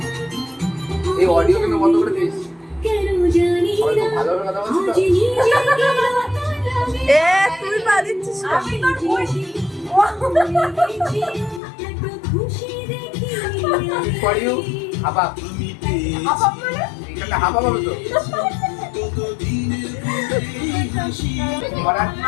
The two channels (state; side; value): drops out; right; at 11.6 s